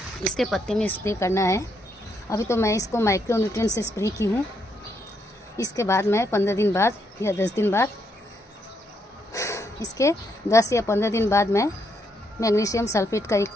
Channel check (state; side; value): normal; both; correlation 0.76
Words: इसके पत्ते में स्प्रे करना है। अभी तो मैं इसको माइक्रो न्यूट्रिएंट से स्प्रे की हूँ। इसके बाद मैं 15 दिन बाद या 10 दिन बाद, इसके 10 या 15 दिन बाद मैं मैग्नीशियम सल्फेट का 1